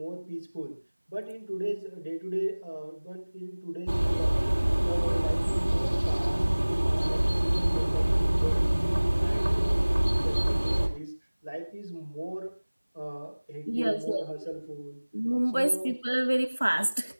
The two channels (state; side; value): inverted; both; correlation -1.00